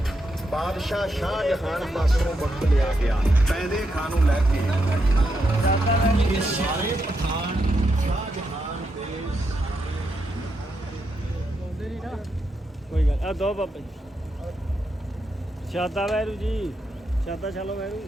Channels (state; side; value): normal; both; correlation 0.83